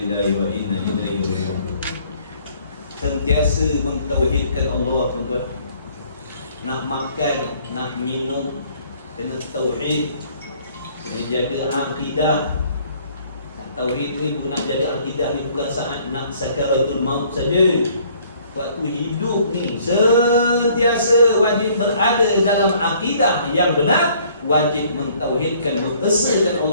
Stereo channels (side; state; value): both; inverted; correlation -0.60